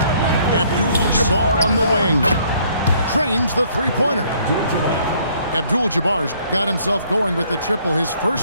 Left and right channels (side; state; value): both; inverted; correlation -0.63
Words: Abdul-Jabbar on the wing. Trains the three-pointer. Abdul-Jabbar's got himself going with the triple, his